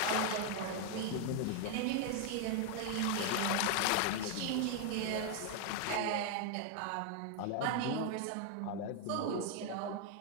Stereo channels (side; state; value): both; different; correlation 0.00